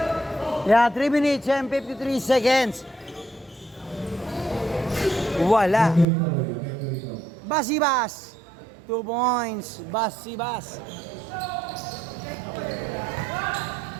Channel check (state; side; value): drops out; left; at 6.1 s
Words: Yan, 3 minutes and 53 seconds. Wala. Basibas. 2 points. Basibas.